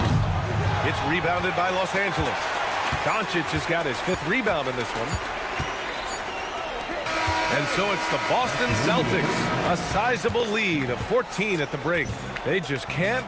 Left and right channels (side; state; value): both; identical; correlation 1.00